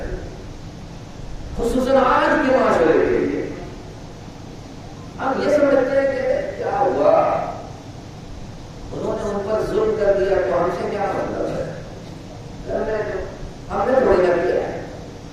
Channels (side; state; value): both; identical; correlation 1.00